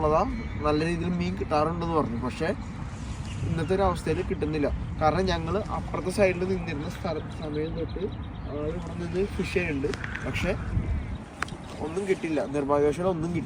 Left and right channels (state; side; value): identical; both; correlation 1.00